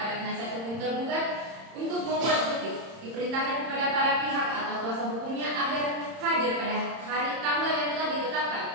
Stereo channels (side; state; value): left; late; 31 ms